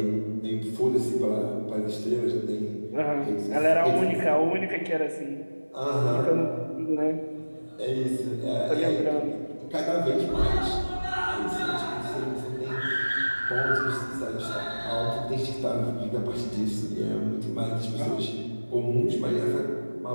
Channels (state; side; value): inverted; both; correlation -1.00